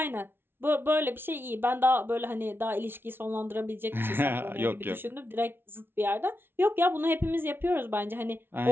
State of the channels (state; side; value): late; left; 0.11 ms